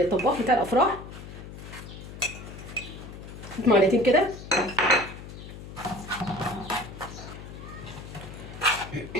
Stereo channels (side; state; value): left; noise; hum, 12 dB below the sound